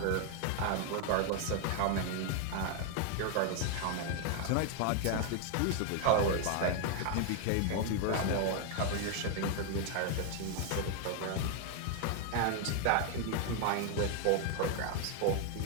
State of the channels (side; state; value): both; different; correlation 0.00